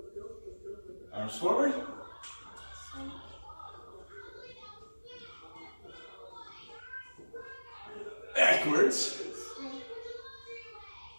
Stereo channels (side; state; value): both; inverted; correlation -1.00